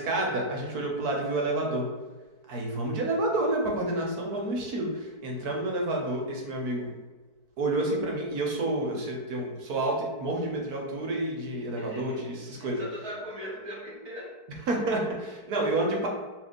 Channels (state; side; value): late; left; 4.6 ms